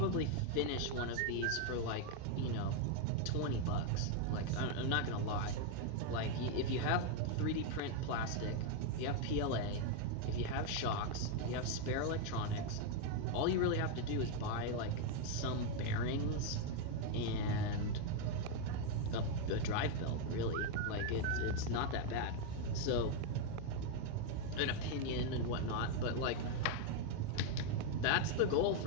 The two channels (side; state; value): both; different; correlation 0.00